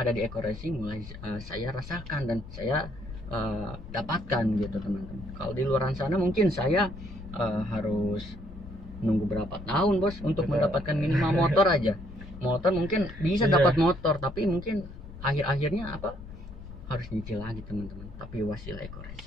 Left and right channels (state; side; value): noise; left; rumble, 13 dB below the sound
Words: ada di Eco Racing mulai saya rasakan dan saya dapatkan gitu teman-teman. Kalau di luar sana mungkin saya harus nunggu berapa tahun Bos untuk mendapatkan minimal motor aja. Motor mungkin bisa dapat motor, tapi mungkin akhir-akhirnya harus nyicil lagi teman-teman. Tapi wasilah Eco